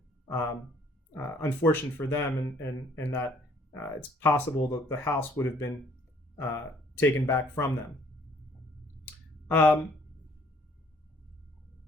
unfortunate for them, and that it's possible that the house would have been taken back from them.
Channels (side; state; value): both; normal; correlation 0.60